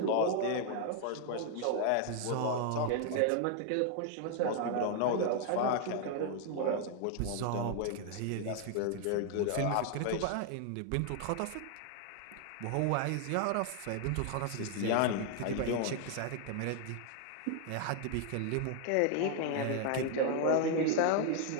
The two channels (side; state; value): both; different; correlation 0.00